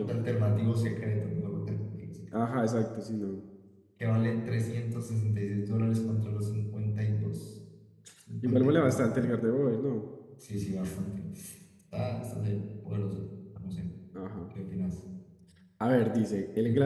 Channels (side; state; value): both; identical; correlation 1.00